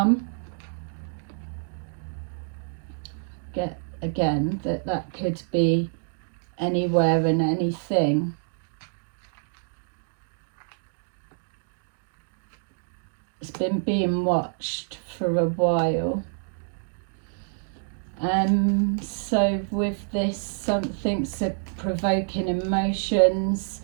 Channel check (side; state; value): left; silent; digital silence